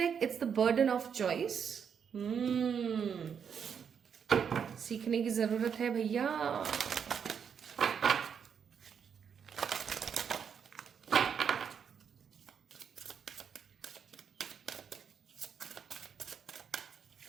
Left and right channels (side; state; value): left; quieter; 7.3 dB